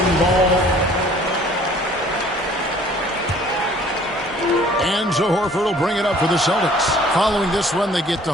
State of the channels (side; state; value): both; normal; correlation 0.54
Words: ball. And so Horford will bring it up for the Celtics. Following this one, they get to